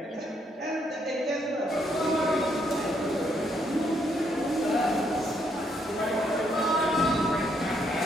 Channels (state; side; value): normal; both; correlation 0.73